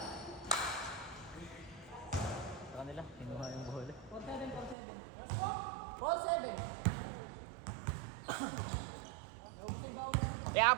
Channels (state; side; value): drops out; left; at 4.8 s